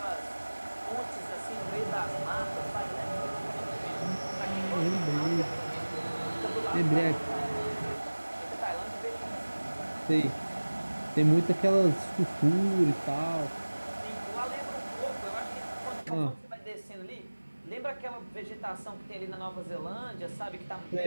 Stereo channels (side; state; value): both; inverted; correlation -1.00